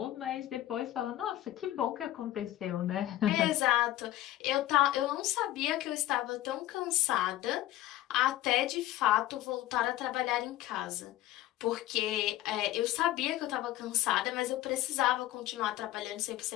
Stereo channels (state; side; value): quieter; right; 14.6 dB